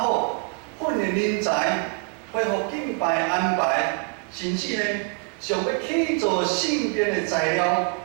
好，训练人才。恢复敬拜安排，甚至呢，想要去做圣殿的材料、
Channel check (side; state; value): left; quieter; 36.9 dB